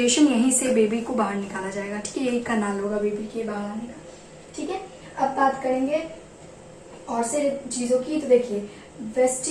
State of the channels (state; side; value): identical; both; correlation 1.00